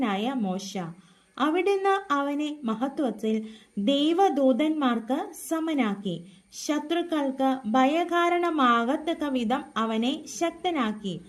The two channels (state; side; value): identical; both; correlation 1.00